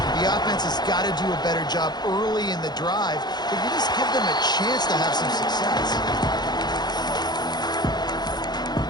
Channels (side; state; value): right; late; 0.20 ms